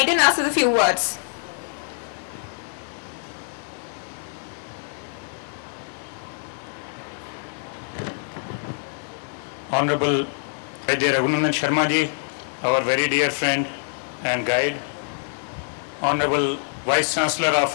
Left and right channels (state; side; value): silent; right; 58 dB below the other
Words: us with a few words. Honorable Vaidya Raghunandan Sharma ji, our very dear friend and guide. Honorable Vice Chancellor